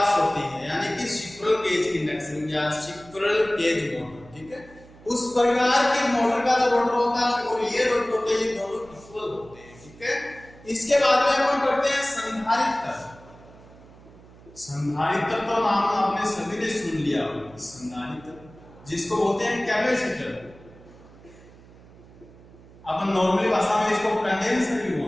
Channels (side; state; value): right; noise; hum, 22 dB below the sound